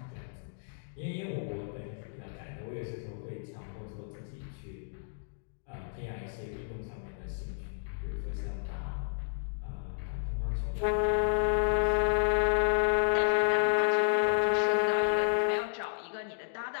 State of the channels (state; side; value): silent; right; digital silence